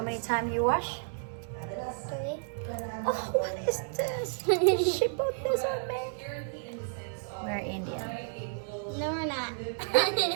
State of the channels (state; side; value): silent; left; 57 dB below the other